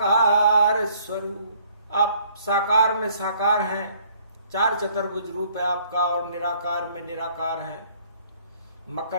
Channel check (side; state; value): both; inverted; correlation -0.61